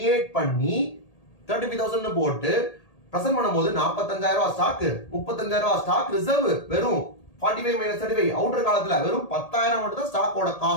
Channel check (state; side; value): late; right; 1.8 ms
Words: பண்ணி 35,000 போட்டு பிரசன்ட் பண்ணும்போது 45,000 ரூபாய் ஸ்டாக் 35,000 ரூபாய் ஸ்டாக் ரிசர்வ் வெறும் 45 minus 35 அவுட்டர் காலத்துல வெறும் 10,000 மட்டும் தான் ஸ்டாக்கோட